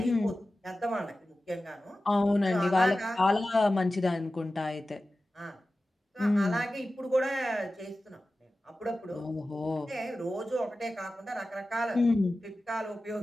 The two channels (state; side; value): normal; both; correlation 0.95